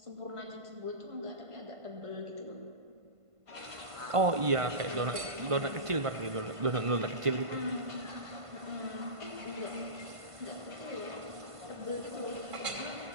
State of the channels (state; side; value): late; left; 1.5 ms